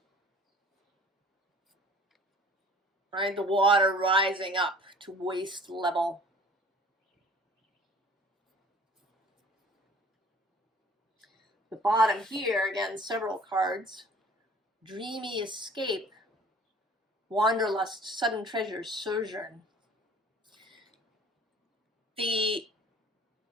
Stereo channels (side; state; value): both; normal; correlation 0.49